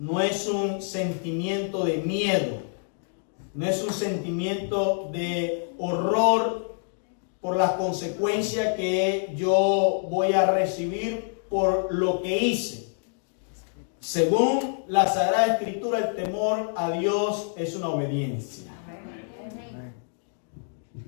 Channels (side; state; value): right; silent; 60 dB below the other